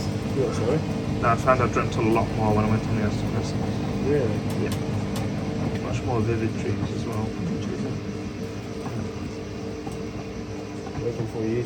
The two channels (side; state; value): both; identical; correlation 1.00